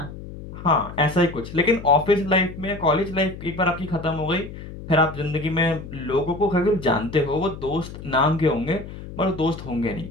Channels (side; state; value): left; noise; hum, 12 dB below the sound